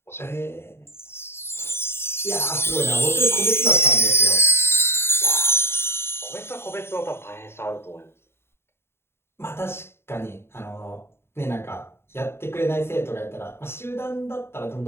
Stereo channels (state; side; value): late; right; 0.12 ms